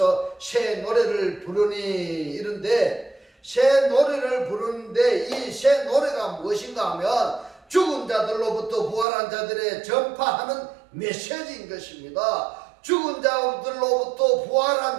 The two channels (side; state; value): left; drops out; at 9.1 s